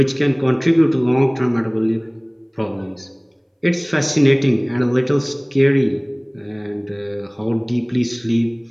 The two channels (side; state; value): both; identical; correlation 1.00